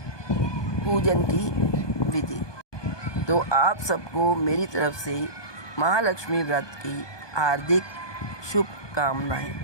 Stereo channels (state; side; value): late; right; 1.2 ms